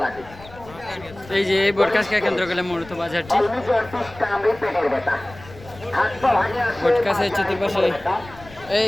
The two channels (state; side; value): noise; left; rumble, 19 dB below the sound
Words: লাগে। এই যে এই বটকাছকে কেন্দ্র করে মূলত বাজারটি। পেটের ব্যথা, বটকাছের চতুর্পাশে